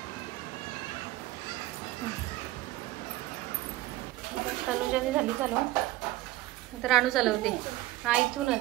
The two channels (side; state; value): left; quieter; 17.2 dB